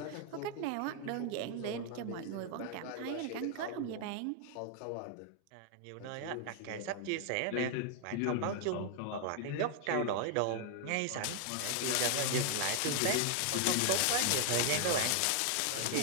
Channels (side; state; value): both; different; correlation 0.00